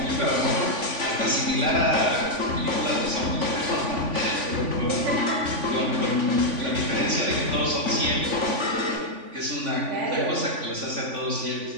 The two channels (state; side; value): late; left; 3.5 ms